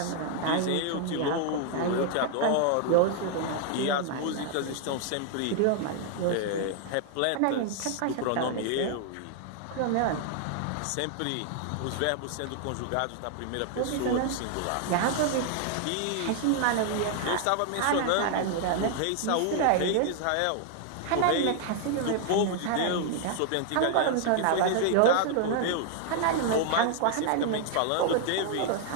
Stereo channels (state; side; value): different; both; correlation 0.00